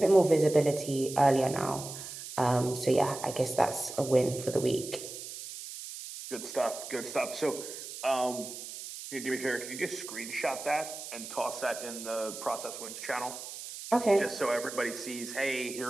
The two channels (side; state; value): right; noise; hiss, 10 dB below the sound